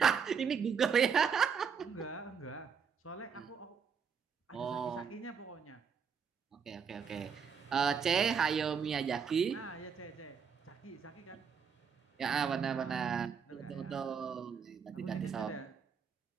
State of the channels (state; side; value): quieter; left; 6.5 dB